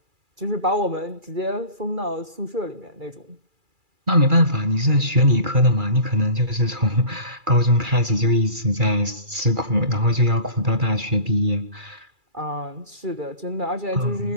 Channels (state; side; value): late; left; 2.4 ms